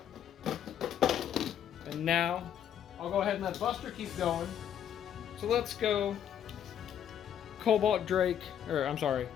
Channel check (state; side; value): quieter; right; 9.5 dB